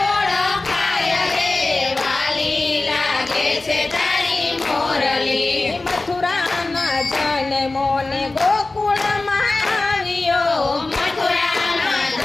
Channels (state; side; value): quieter; right; 3.2 dB